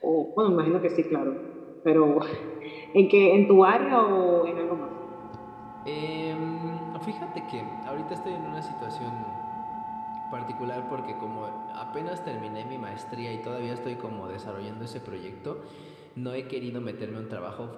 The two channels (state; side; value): identical; both; correlation 1.00